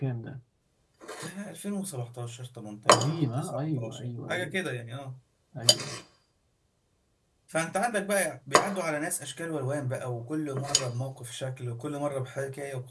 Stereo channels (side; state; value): both; identical; correlation 1.00